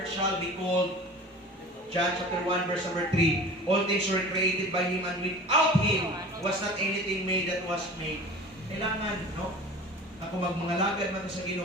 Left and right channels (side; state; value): both; normal; correlation 0.39